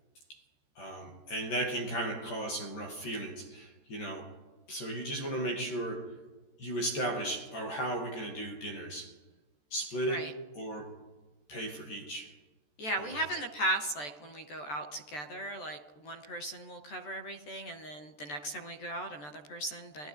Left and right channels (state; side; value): late; right; 14 ms